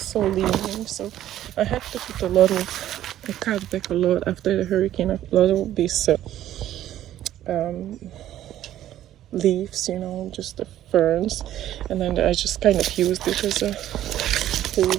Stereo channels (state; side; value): quieter; left; 12.5 dB